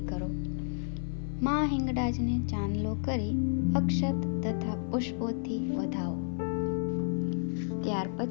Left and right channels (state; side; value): silent; right; 57 dB below the other